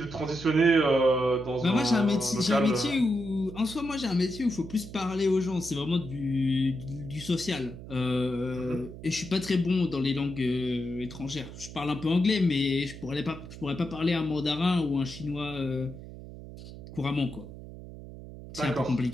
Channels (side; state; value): right; noise; hum, 13 dB below the sound